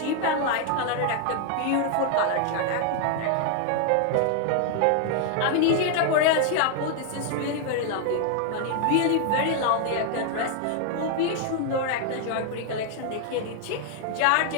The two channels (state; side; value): different; both; correlation 0.00